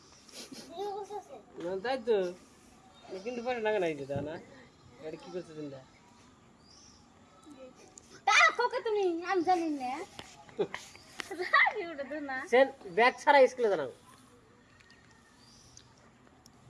ভিডিও করতেছে না তাই তো কিন্তু পয়সা লাগে না এই দাদা না এটা কি করছে চিন্তা তা কোকে তুমি আমি জানি না রাখি ওটা তো না সেন ব্যাগ ছাড়া স্কুলে জানাও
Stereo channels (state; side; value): identical; both; correlation 1.00